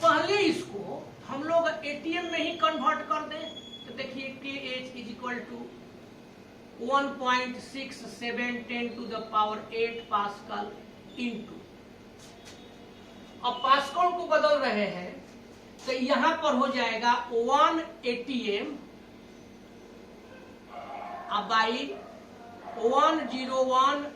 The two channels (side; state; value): both; identical; correlation 1.00